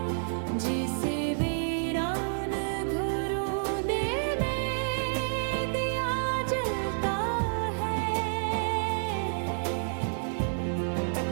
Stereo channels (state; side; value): silent; left; digital silence